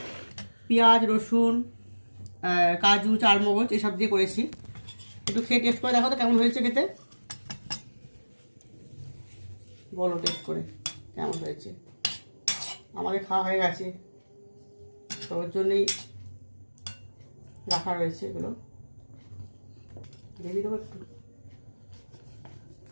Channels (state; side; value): inverted; both; correlation -1.00